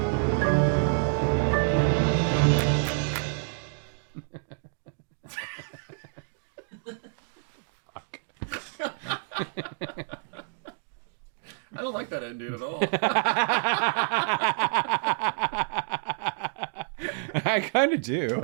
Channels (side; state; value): left; silent; digital silence